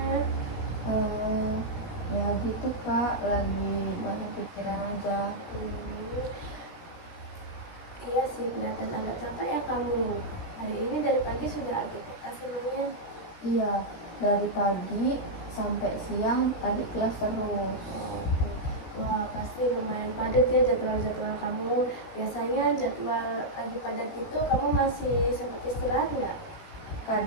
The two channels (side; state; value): right; late; 16 ms